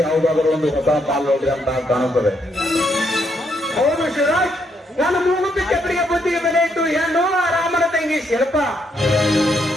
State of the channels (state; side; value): normal; both; correlation 0.75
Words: ಯಾವುದಾದರೂ ಒಂದು ಹೊಸ ಪಾಲು ನೋಡಿದೆ ಅಂತ ಕಾಣುತ್ತದೆ. ಹೌದು ಶಿವರಾಜ್, ನಾನು ಮೂಗುತ್ತಿ ಕೆಬ್ಬರಿಗೆ ಬುದ್ಧಿಗೆ ಬೆಲೆ ಇಟ್ಟು ಹೆಣ್ಣು ರಾಮನ ತಂಗಿ ಶಿಲ್ಪ.